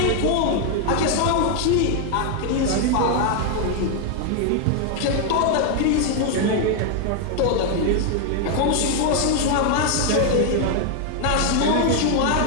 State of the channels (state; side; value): different; both; correlation 0.00